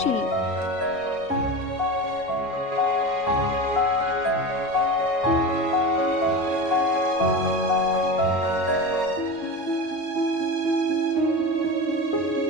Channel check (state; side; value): normal; both; correlation 0.27